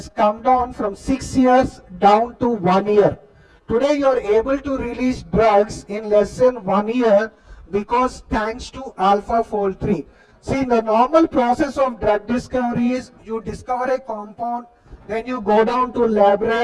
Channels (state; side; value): identical; both; correlation 1.00